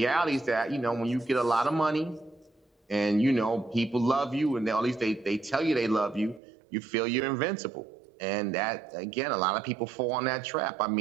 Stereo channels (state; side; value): drops out; left; at 6.4 s